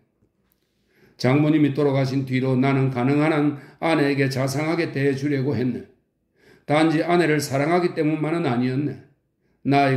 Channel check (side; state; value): both; identical; correlation 1.00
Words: 장모님이 돌아가신 뒤로 나는 가능한 한 아내에게 자상하게 대해주려고 했네. 단지 아내를 사랑하기 때문만은 아니었네.